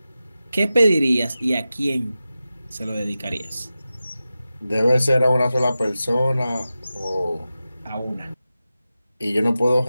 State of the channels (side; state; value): both; inverted; correlation -0.93